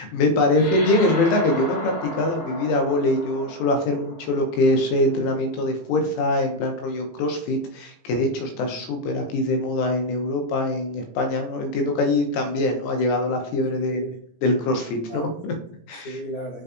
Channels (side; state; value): right; late; 18 ms